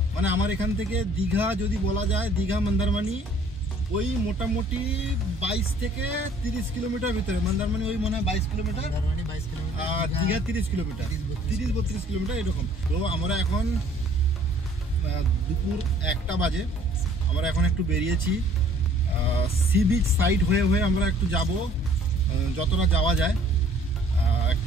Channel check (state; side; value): normal; both; correlation 0.57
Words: মানে আমার এখান থেকে দীঘা যদি বলা যায়, দীঘা মন্দারমণি ওই মোটামুটি 22 থেকে 30 কিলোমিটার ভিতরে। মন্দারমণি ওই মনে হয় 22 কিলোমিটার, আর দীঘা 30 কিলোমিটার, 30-32 কিলোমিটার এরকম। তো আমরা এখন দুপুর 1টা বাজে, আমরা এখন একটু বেরিয়েছি সি বিচ সাইড হয়ে আমরা একটু যাব, যতটা যাওয়া যায়।